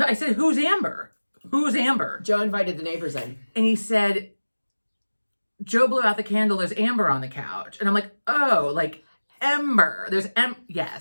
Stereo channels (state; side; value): inverted; both; correlation -1.00